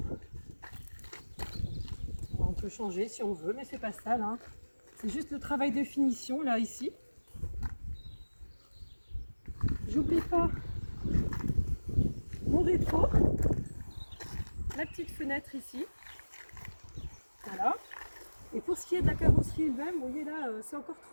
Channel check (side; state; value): both; inverted; correlation -1.00